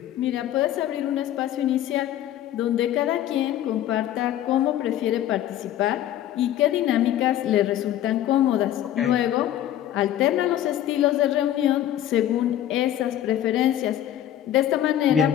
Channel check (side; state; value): right; quieter; 12.0 dB